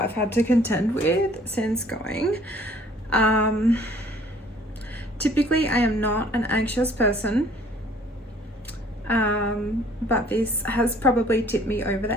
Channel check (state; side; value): normal; both; correlation 0.56